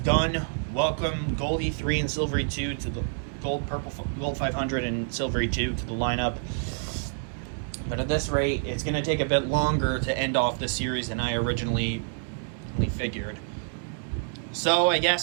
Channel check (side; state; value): left; silent; digital silence